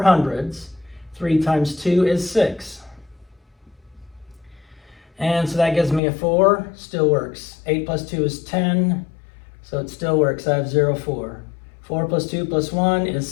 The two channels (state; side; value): drops out; right; at 6.0 s